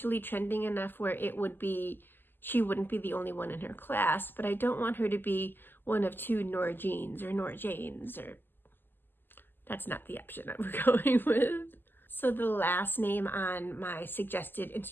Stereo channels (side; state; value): right; late; 0.094 ms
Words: trending enough where it would be, she wouldn't be the only one in her class, but I don't want her to be one of 2 Nora Jeans or Nora Janes, or that's not the option that we're going with. So the last name on my suggested